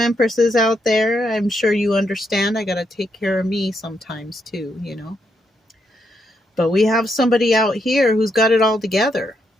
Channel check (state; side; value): normal; both; correlation 0.79